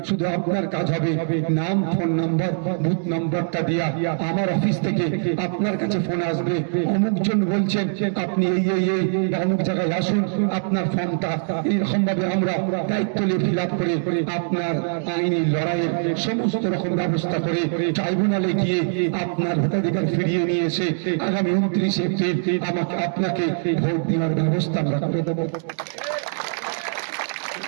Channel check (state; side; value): silent; left; digital silence